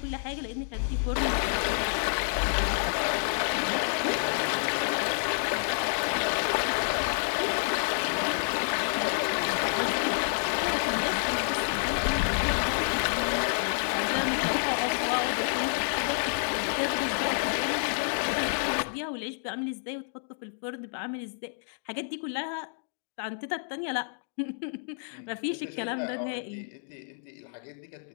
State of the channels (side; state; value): right; silent; digital silence